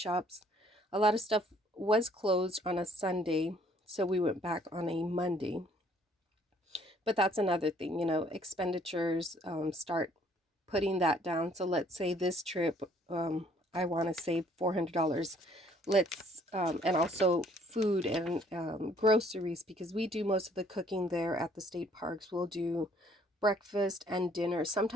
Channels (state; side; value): normal; both; correlation 0.61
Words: A lot of stuff was closed on a Sunday, so we went back on a Monday. But that's another thing, you know, expenditures, start putting that down. So let's say this trip, I want to save $400. Let's, and also food and groceries, because we do most of the cooking there at the state parks. We'll do breakfast and dinner,